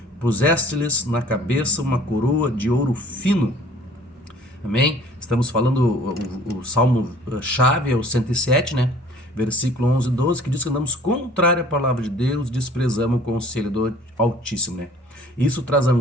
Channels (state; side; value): normal; both; correlation 0.52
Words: puseste-lhes na cabeça uma coroa de ouro fino. Amém? Estamos falando, o salmo-chave é o 107, né? Versículo 11 e 12, que diz que andamos contrário à palavra de Deus, desprezamos o conselho do Altíssimo, né? Isso traz